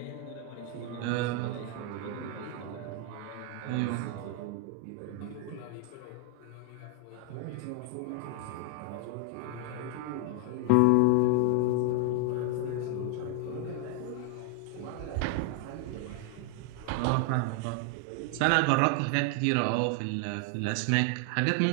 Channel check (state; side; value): different; both; correlation 0.00